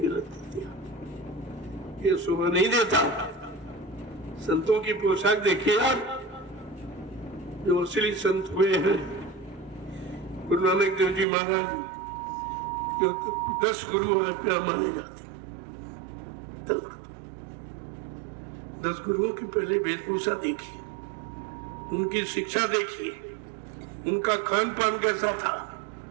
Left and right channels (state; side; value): drops out; left; at 11.2 s